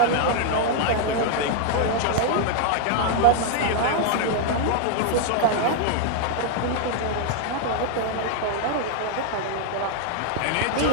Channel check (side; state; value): both; different; correlation 0.00